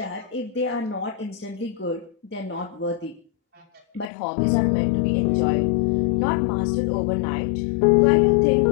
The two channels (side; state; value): right; drops out; at 4.0 s